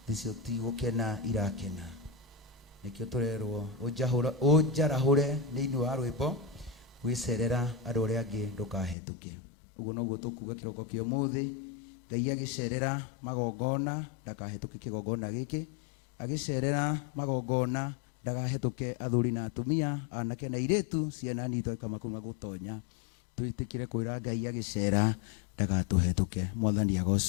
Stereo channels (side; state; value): right; drops out; at 9.0 s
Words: thicio ti gukena irakena nikio turerwo unjarahure niini wa rwimbo gwicerera andu aria angi ndukahetuke uguo noguo tukuga kiroko kio muthi Ngai agicerera magongona ndakahetuke kigongona giki agicerera magongona ndagahetuke athuri na atumia anake na iretu ciana nito kama kuma gutonya twitikire kwira Ngai agicera ndagatuhetuke mwathani